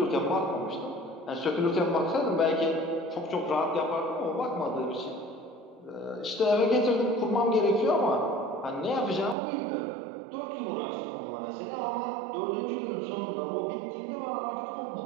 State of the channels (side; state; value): left; drops out; at 9.3 s